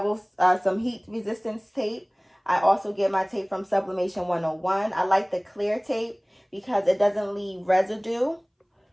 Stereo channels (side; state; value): both; identical; correlation 1.00